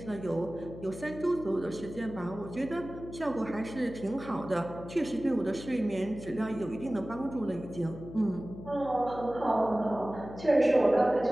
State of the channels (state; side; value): noise; left; hum, 13 dB below the sound